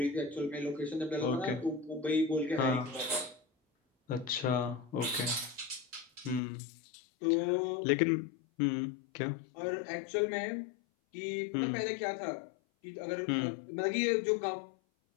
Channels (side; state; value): right; drops out; at 6.4 s